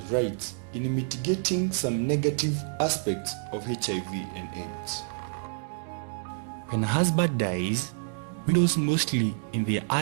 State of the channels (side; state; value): left; silent; 59 dB below the other